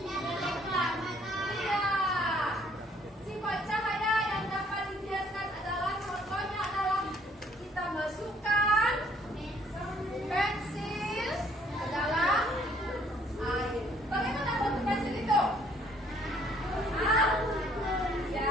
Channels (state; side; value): normal; both; correlation 0.63